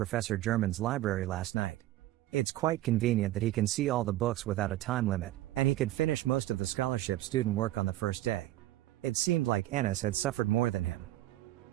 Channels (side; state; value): left; quieter; 15.3 dB